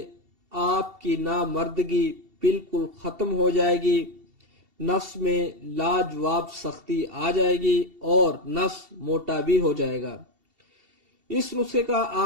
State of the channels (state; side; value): late; left; 2.7 ms